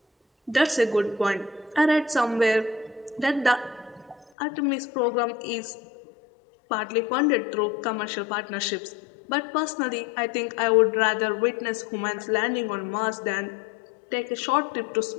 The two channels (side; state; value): right; drops out; at 4.3 s